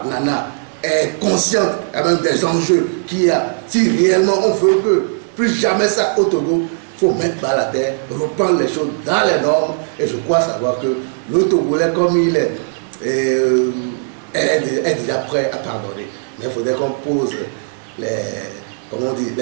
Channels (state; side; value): silent; left; digital silence